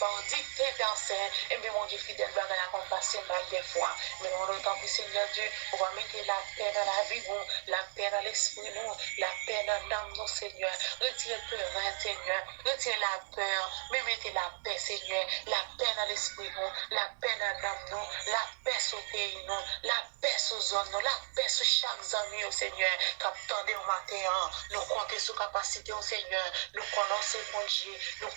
on dit tes personnes, et bien mon Dieu fidèle, va qu'on passe mal des fois. Mais on entend que Seigneur Dieu, on va mettre la paix dans la vie, la paix dans l'esprit, nous, la paix dans l'âme, nous, Seigneur. Retirez le peur, Seigneur. Retirez la peur, mais mettez la paix, Seigneur. La paix dans l'esprit, nous, la paix dans l'âme, nous, la paix sur le pays, nous, la paix sur la zone, nous, la paix sur chaque ami, au Seigneur. Quand attendez au matin, nous comptons sur capacité, au Seigneur. Nous connaissons mon Dieu, nous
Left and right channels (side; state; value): left; silent; 54 dB below the other